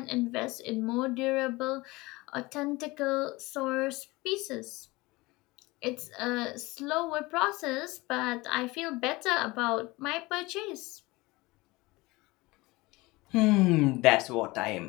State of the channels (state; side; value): quieter; right; 22.1 dB